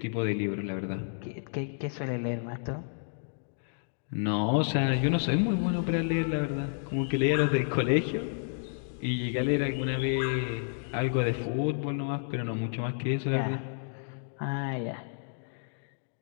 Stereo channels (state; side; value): silent; right; digital silence